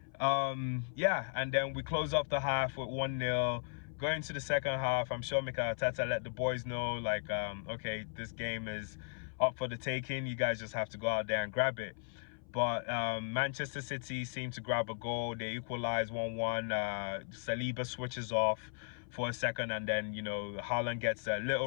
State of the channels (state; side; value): silent; right; 54 dB below the other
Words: And then we close off the half with 1-0. Going to the second half, I'm sure Mikel Arteta let the boys know, okay, this game is up for the taking. You guys just have to go out there and grab it. But Manchester City seem to grab a goal. They equalize 1-1. Saliba switches off for a second, and then Haaland gets a